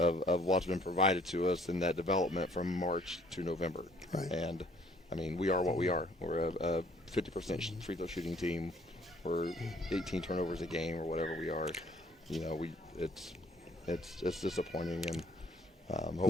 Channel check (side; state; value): both; normal; correlation 0.60